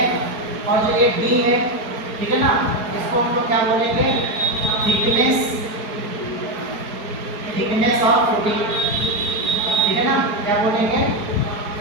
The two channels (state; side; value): late; left; 4.8 ms